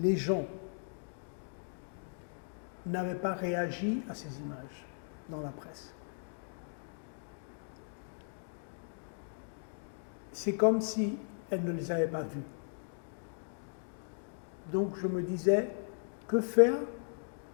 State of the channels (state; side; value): silent; right; digital silence